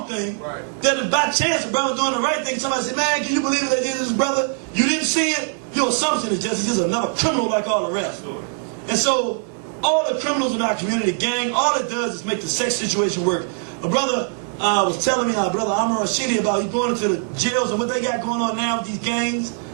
thing that if by chance a brother doing the right thing, somebody say, man, can you believe what they did to this brother? You didn't see it. Your assumption is he's just another criminal like all the rest. And so all the criminals in our community, gang, all it does is make the sex situation work. A brother was telling me, brother Amr Rashidi, about he's going into the jails and what they got going on now with these gangs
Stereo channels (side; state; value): left; silent; 59 dB below the other